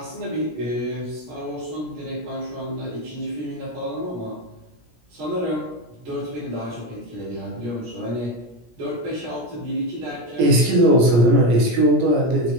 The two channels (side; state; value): left; late; 17 ms